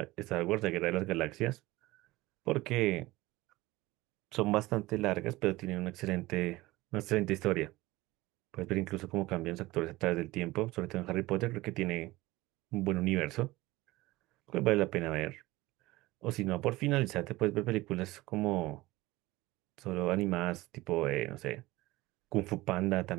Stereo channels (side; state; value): left; quieter; 19.4 dB